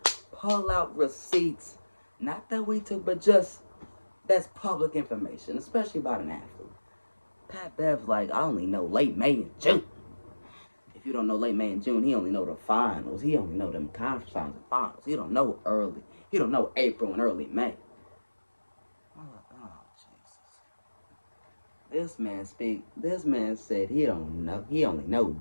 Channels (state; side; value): inverted; both; correlation -1.00